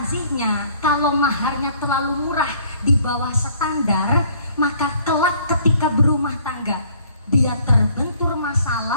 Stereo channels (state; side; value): inverted; both; correlation -0.59